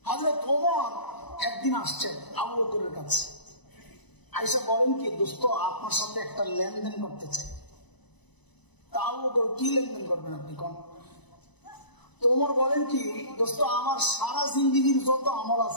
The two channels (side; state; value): right; late; 1.0 ms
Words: হযরত ওমর একদিন আসছেন আবু বকরের কাছে। আয়েশা বলেন কি, দোস্ত আপনার সাথে একটা লেনদেন করতে চাই। তা আবু বকর কি লেনদেন করবেন আপনি কোন? ওমর বলেন কি, দোস্ত আমার সারা জিন্দেগির যত আমল